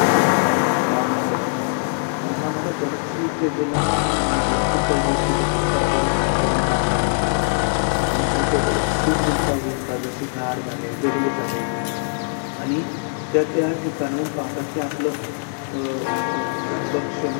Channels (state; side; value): silent; right; 65 dB below the other